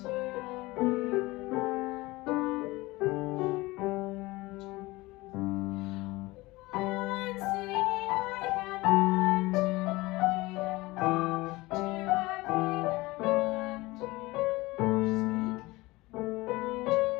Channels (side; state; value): right; quieter; 20.8 dB